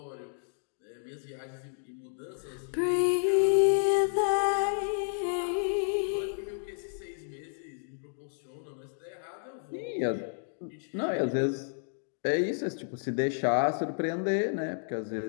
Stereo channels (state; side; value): silent; right; digital silence